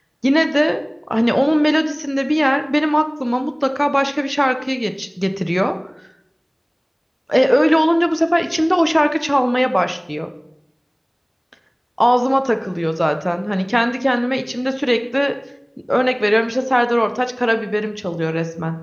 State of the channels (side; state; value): both; identical; correlation 1.00